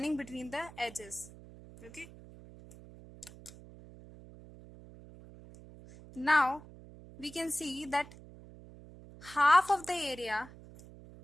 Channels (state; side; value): noise; right; hum, 19 dB below the sound